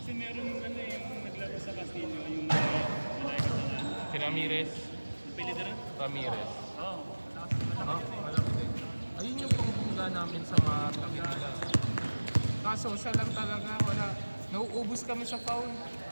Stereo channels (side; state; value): both; inverted; correlation -1.00